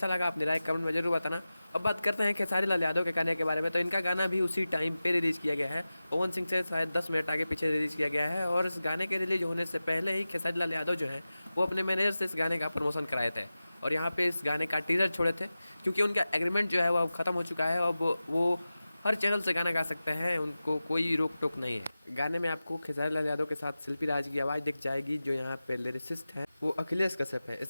लगा अपनी राय कमेंट में जरूर बताना। अब बात करते हैं खेसारी लाल यादव के गाने के बारे में। तो इनका गाना भी उसी टाइम पे रिलीज़ किया गया है। पवन सिंह से शायद 10 मिनट आगे पीछे रिलीज़ किया गया है। और इस गाने के रिलीज होने से पहले ही खेसारी लाल यादव जो है वो अपने मैनेजर से इस गाने का प्रमोशन कराए थे और यहाँ पे इस गाने का टीजर छोड़े थे, क्योंकि उनका एग्रीमेंट जो है वो अब ख़त्म हो चुका है। अब वो हर चैनल से गाना गा सकते हैं, उनको कोई रोक टोक नहीं है। गाने में आपको खेसारी लाल यादव के साथ शिल्पी राज की आवाज़ दिख जाएगी। जो यहाँ पे लिरिसिस्ट हैं वो अखिलेश कश्यप है।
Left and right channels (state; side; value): inverted; both; correlation -0.95